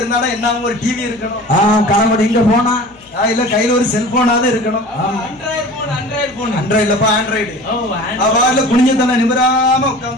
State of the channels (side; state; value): left; noise; hum, 26 dB below the sound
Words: இருந்தாலும் என்ன ஒரு டிவி இருக்கணும். கணவன் இங்க போனா இல்ல கையில ஒரு செல்போனாவது இருக்கணும். ஆண்ட்ராய்டு அவள் குனிஞ்சத்தன நிமிராம